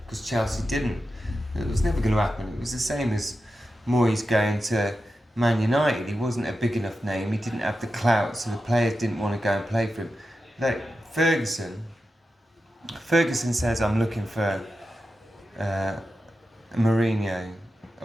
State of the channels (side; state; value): both; normal; correlation 0.91